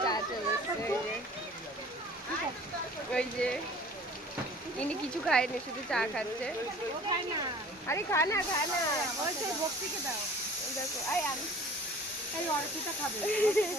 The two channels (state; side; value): normal; both; correlation 0.47